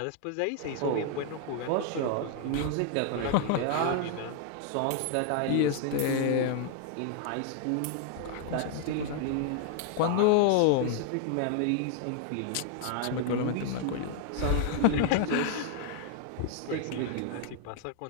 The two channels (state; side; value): different; both; correlation 0.00